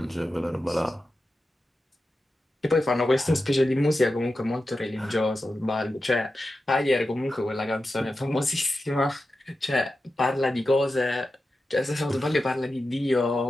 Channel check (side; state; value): both; normal; correlation 0.92